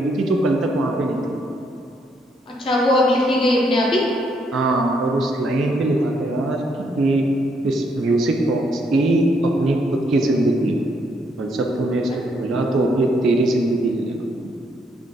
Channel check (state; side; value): normal; both; correlation 0.73